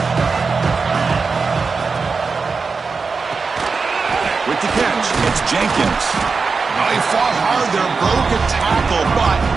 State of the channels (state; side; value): quieter; left; 4.7 dB